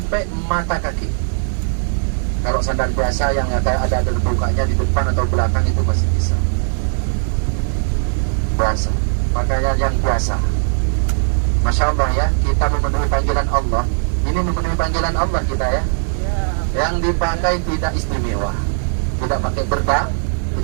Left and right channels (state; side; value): silent; left; digital silence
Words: mata kaki. Kalau sandal biasa yang ada bukanya di depan atau belakang itu masih bisa. Biasa, pakaian yang biasa. Masya Allah ya, kita memenuhi panggilan Allah. Ini memenuhi panggilan Allah kita ya. Yang dipakai tidak istimewa, tidak pakai